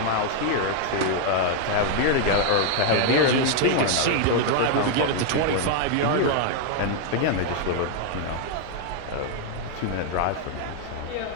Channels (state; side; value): different; both; correlation 0.00